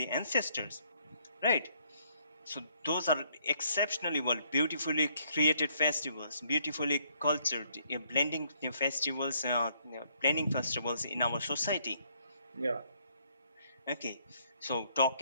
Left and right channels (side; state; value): both; inverted; correlation -0.68